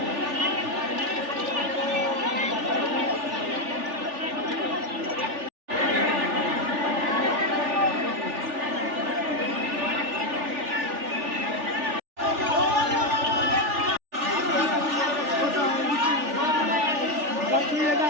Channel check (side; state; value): left; late; 3.4 ms